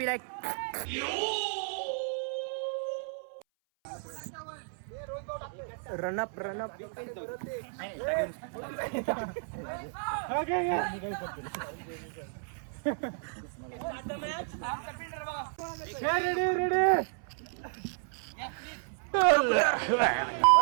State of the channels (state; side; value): silent; left; 56 dB below the other